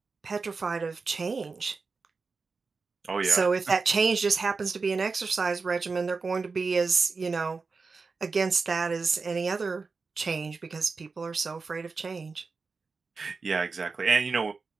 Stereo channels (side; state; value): left; quieter; 4.4 dB